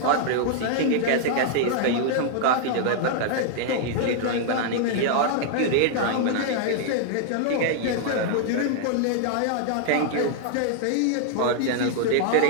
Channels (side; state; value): both; different; correlation 0.00